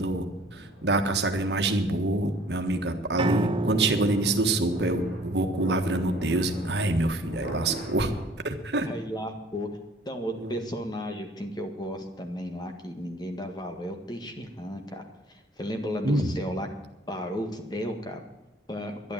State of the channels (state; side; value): normal; both; correlation 0.53